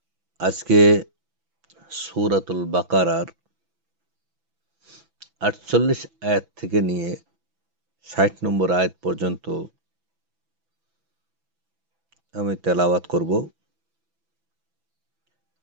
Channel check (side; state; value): left; late; 6.0 ms